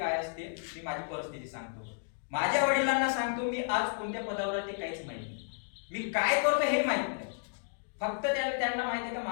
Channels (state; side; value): silent; right; digital silence